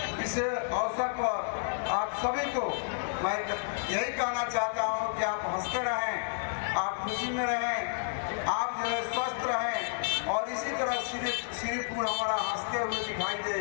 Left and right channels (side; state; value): right; silent; digital silence